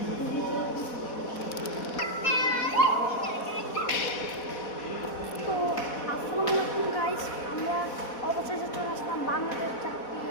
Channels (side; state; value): right; late; 4.1 ms